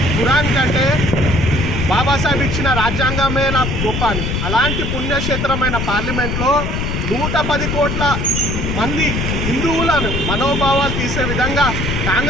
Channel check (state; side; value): noise; left; rumble, 2 dB below the sound